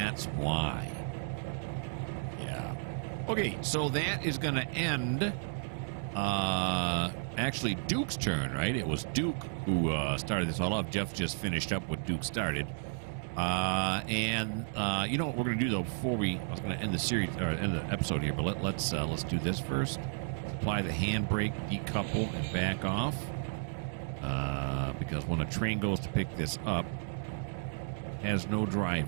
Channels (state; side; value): silent; left; digital silence